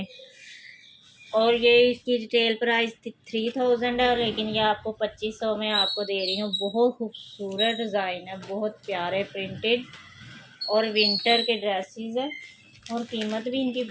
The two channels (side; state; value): both; identical; correlation 1.00